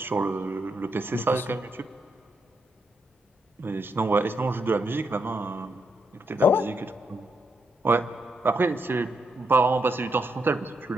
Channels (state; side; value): normal; both; correlation 0.79